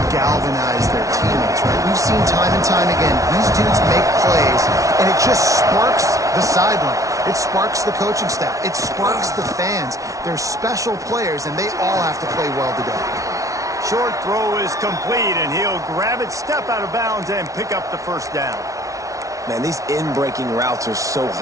galvanize their teammates, right? We've seen time and time again, these dudes make plays, and it just sparks the sideline. It sparks the coaching staff. It sparks the fans. They're special players, and they all have to play well today. Short throw is complete, and he'll grab it, step out of bounds, and pick up the first down. Man, these in-breaking routes are so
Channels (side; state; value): left; late; 0.16 ms